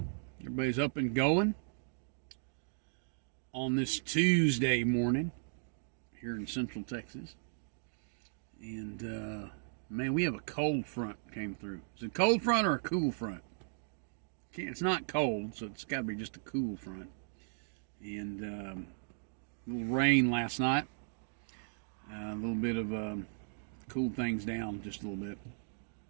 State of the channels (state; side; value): silent; left; digital silence